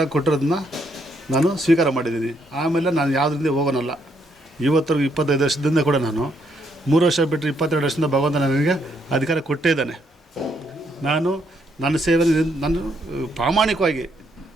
ಕೊಟ್ಟಿರೋದನ್ನ ನಾನು ಸ್ವೀಕಾರ ಮಾಡಿದ್ದೀನಿ. ಆಮೇಲೆ ನಾನು ಯಾವುದರಿಂದ ಹೋಗೋನಲ್ಲ. ಇವತ್ತರೆಗೂ 25 ವರ್ಷದಿಂದ ಕೂಡ ನಾನು 3 ವರ್ಷ ಬಿಟ್ಟರೆ 22 ವರ್ಷದಿಂದ ಭಗವಂತ ನನಗೆ ಅಧಿಕಾರ ಕೊಟ್ಟೇ ಇದ್ದಾನೆ. ನಾನು ನನ್ನ ಸೇವೆ ನಾನು ಪ್ರಾಮಾಣಿಕವಾಗಿ,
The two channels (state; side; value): normal; both; correlation 0.74